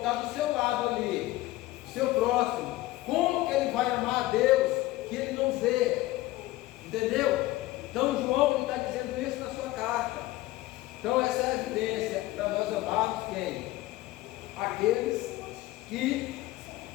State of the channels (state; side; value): quieter; right; 17.6 dB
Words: está do seu lado ali, o seu próximo, como que ele vai amar a Deus que ele não vê? Entendeu? Então João está dizendo isso na sua carta. Então essa é a evidência para nós amarmos quem? Aqueles que